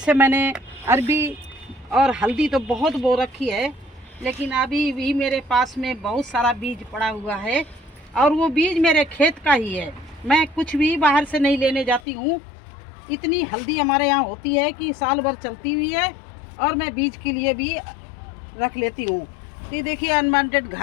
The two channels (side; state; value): right; drops out; at 12.0 s